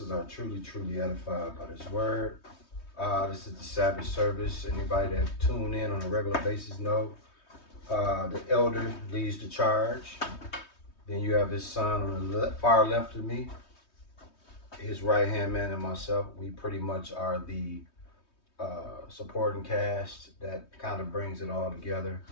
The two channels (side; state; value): right; late; 3.2 ms